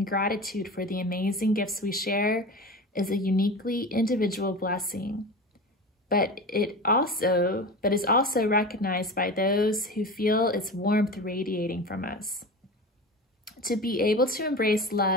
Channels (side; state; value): both; normal; correlation 0.30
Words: gratitude for the amazing gifts we share is a uniquely individual blessing. But is also recognized by those who feel its warmth radiating from us. To be able to embrace